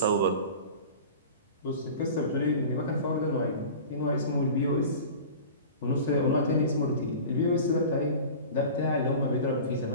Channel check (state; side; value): inverted; both; correlation -0.37